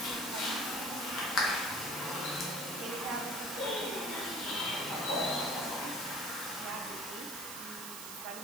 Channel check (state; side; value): noise; right; hiss, 8 dB below the sound